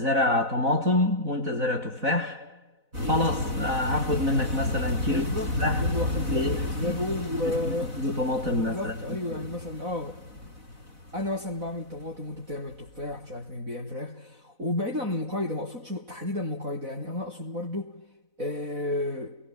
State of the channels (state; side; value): late; left; 4.0 ms